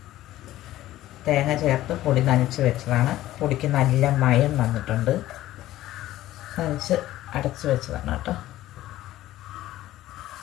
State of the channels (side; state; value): right; quieter; 14.8 dB